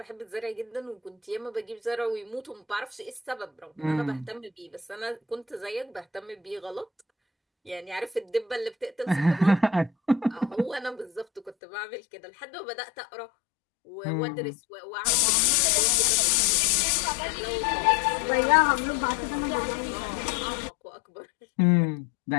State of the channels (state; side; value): drops out; right; at 11.6 s